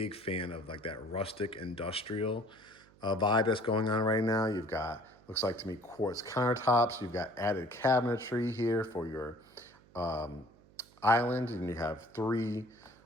fan of like that rustic industrial vibe that's going on right now. You've got, looks like to me, quartz countertops. You've got added cabinetry here for your island, and you have 3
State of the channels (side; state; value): right; noise; hum, 27 dB below the sound